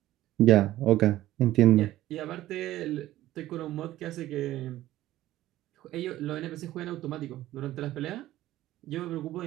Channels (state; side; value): quieter; left; 14.9 dB